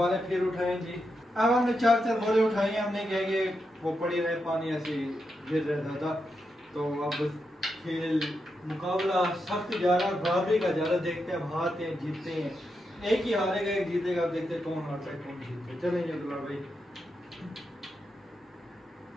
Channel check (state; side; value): normal; both; correlation 0.85